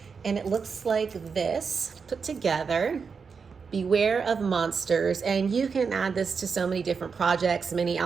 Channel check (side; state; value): left; quieter; 5.6 dB